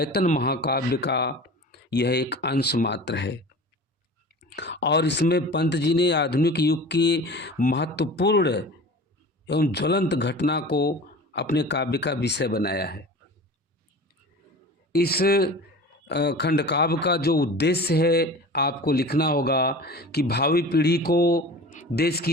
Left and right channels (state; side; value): normal; both; correlation 0.38